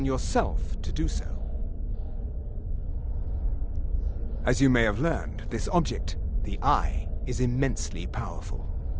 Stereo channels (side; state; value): both; identical; correlation 1.00